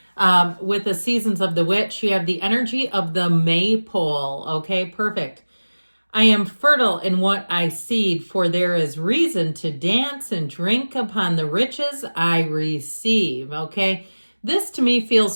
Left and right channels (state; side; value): inverted; both; correlation -1.00